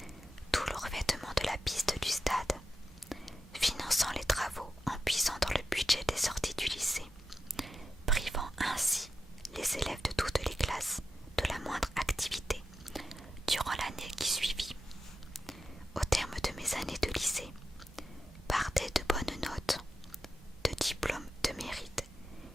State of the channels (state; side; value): normal; both; correlation 0.89